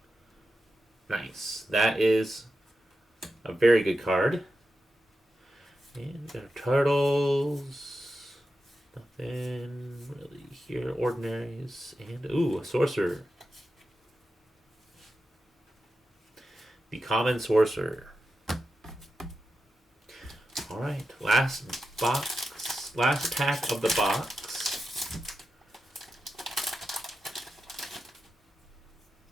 Nice. That is a very good card. And we got our turtles. Nothing really here. Ordinaries. And, ooh, a sorcerer. The Common Sorcerer. Alright, last box. Last pack of the box.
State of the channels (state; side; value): normal; both; correlation 0.90